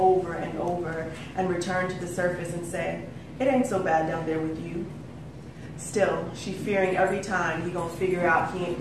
and over and returned to the surface and said, it ain't so bad down there with you. Still, she fearing every time he gonna figure out he ain't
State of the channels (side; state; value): both; identical; correlation 1.00